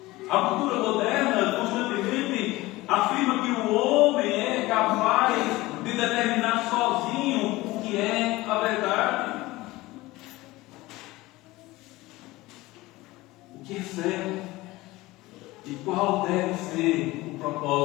A cultura moderna constantemente afirma que o homem é capaz de determinar sozinho o que é a verdade. O que é certo e qual deve ser o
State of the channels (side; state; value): right; quieter; 19.6 dB